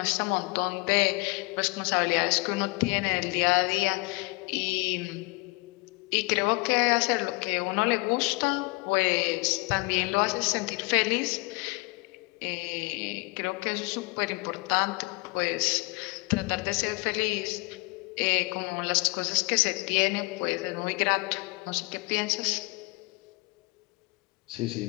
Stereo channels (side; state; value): right; quieter; 26.4 dB